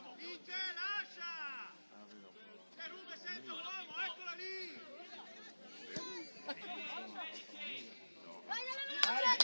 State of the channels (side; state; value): both; inverted; correlation -1.00